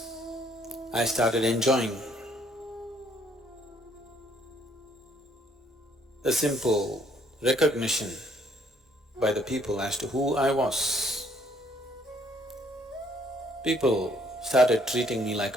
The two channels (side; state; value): both; normal; correlation 0.65